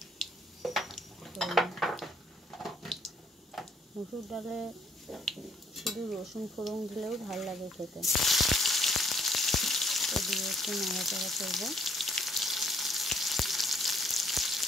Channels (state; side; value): normal; both; correlation 0.64